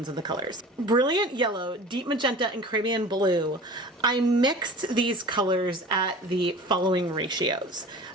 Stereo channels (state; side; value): normal; both; correlation 0.40